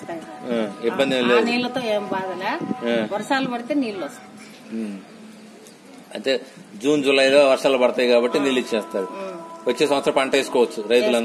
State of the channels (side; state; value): both; identical; correlation 1.00